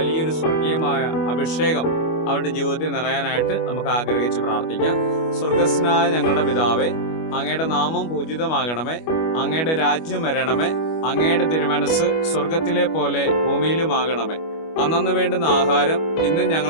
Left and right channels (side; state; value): right; late; 25 ms